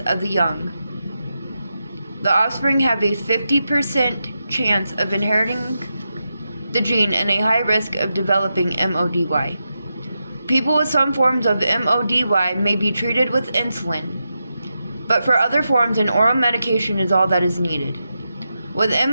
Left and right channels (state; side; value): inverted; both; correlation -0.88